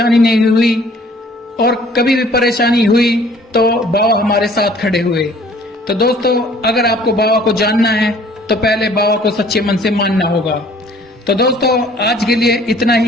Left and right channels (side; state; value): both; normal; correlation 0.55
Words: नहीं हुई और कभी भी परेशानी हुई तो बाबा हमारे साथ खड़े हुए। तो दोस्तों अगर आपको बाबा को जानना है तो पहले बाबा को सच्चे मन से मानना होगा। तो दोस्तों आज के लिए इतना